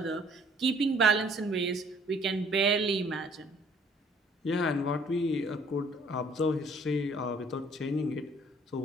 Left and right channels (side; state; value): both; normal; correlation 0.58